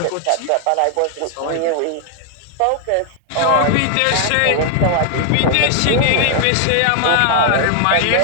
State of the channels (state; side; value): different; both; correlation 0.00